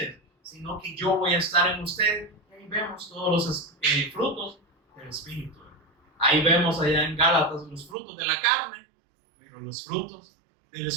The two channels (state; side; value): drops out; left; at 8.0 s